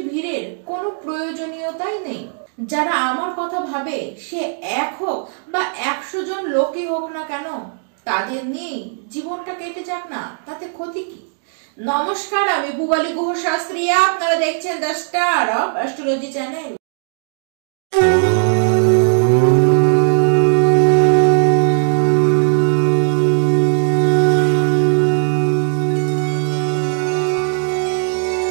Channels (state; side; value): silent; left; digital silence